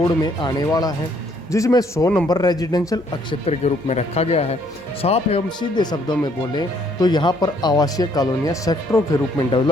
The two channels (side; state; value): both; normal; correlation 0.66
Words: में आने वाला है, जिसमें 100 नंबर रेजिडेंशियल क्षेत्र के रूप में रखा गया है। साफ एवं सीधे शब्दों में बोलें तो यहाँ पर आवासीय कॉलोनियाँ सेक्टरों के रूप में